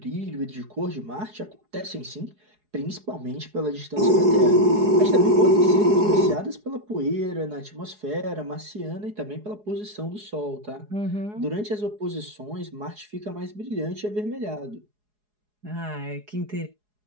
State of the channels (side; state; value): left; late; 4.8 ms